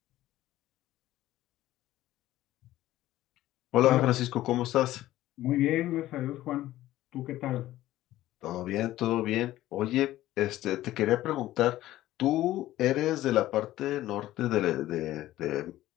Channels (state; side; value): quieter; right; 14.9 dB